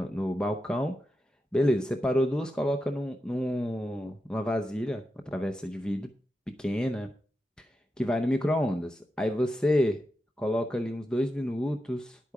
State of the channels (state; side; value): normal; both; correlation 0.89